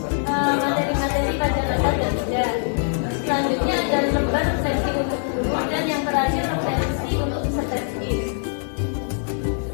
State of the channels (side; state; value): right; silent; digital silence